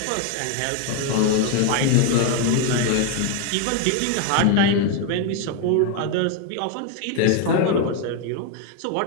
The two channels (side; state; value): both; different; correlation 0.01